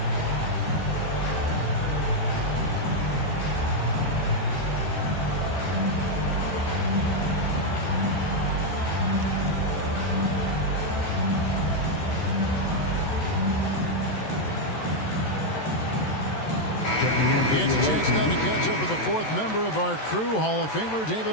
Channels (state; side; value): late; right; 14 ms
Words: It's a chance now to catch up with the fourth member of our crew, Hall of Famer